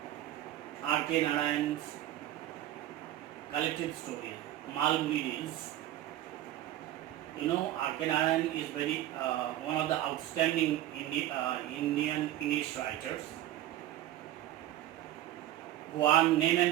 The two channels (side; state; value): left; quieter; 13.7 dB